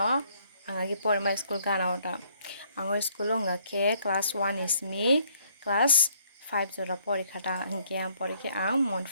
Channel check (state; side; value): inverted; both; correlation -0.66